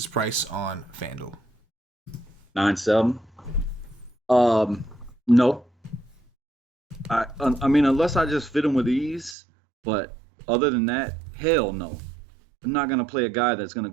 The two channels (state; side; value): drops out; left; at 9.3 s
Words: price on FanDuel? 9-7. No. I mean, unless I just fit him with ease, but other than that, hell no. I'm not gonna play a guy that's gonna